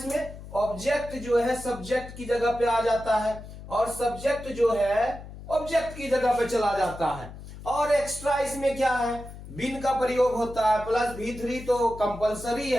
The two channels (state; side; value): noise; left; hum, 14 dB below the sound